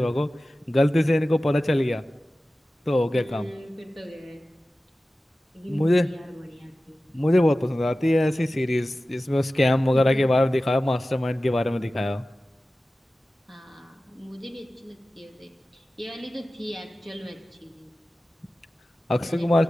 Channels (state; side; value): normal; both; correlation 0.96